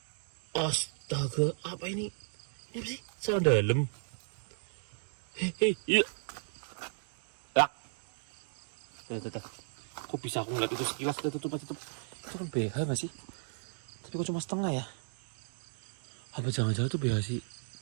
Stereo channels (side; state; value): left; silent; digital silence